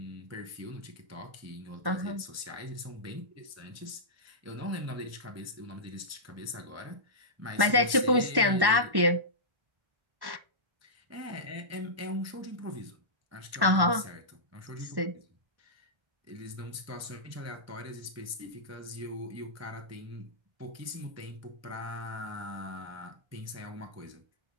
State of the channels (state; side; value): late; left; 1.1 ms